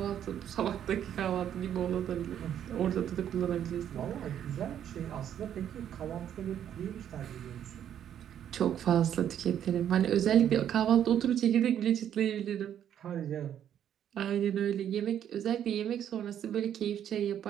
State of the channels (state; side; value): quieter; left; 9.9 dB